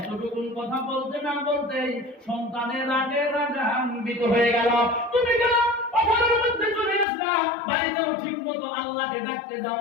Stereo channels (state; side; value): drops out; right; at 7.1 s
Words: কথা বলতে না বলতেই সন্তানের রাগে রাগান্বিত হয়ে গেল। তুমি কেন পাথারের মধ্যে চলে আসলা? বাড়িতেও ঠিক মতো আল্লাহকে ডাকতে দাও